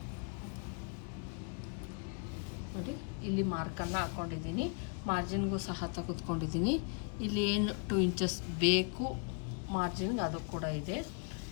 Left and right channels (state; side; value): quieter; right; 36.6 dB